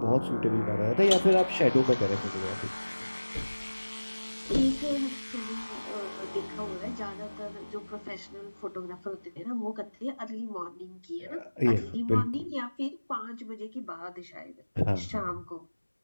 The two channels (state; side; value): inverted; both; correlation -1.00